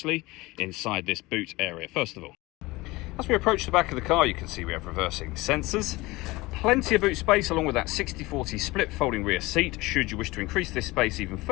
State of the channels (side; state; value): right; quieter; 21.1 dB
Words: inside this boot area, first of all. As we approach the back of the car, you can see we have reversing sensors. Plenty of boot space along with that 60/40 split folding rear seat, should you wish to increase this space even